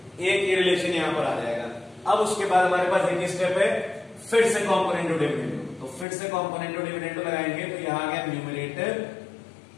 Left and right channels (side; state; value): right; drops out; at 6.1 s